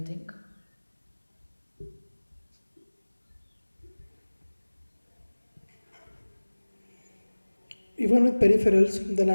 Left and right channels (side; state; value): both; inverted; correlation -1.00